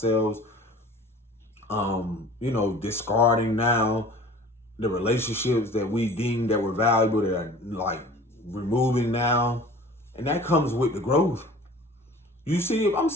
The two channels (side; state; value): both; normal; correlation 0.45